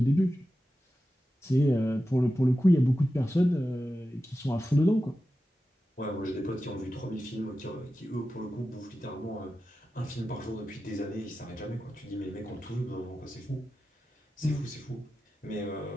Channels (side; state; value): both; normal; correlation 0.92